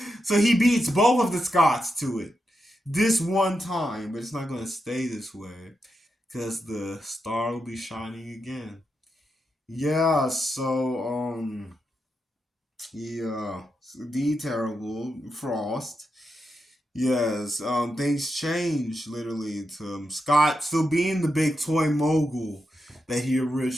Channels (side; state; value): both; normal; correlation 0.86